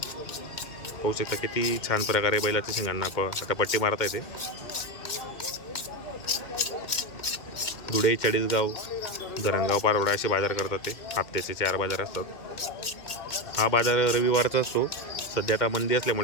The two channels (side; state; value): right; late; 2.1 ms